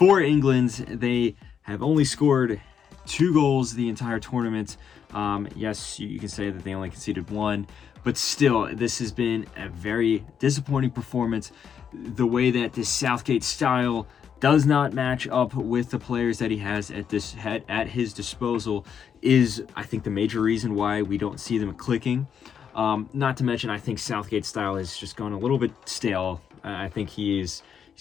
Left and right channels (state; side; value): quieter; right; 7.7 dB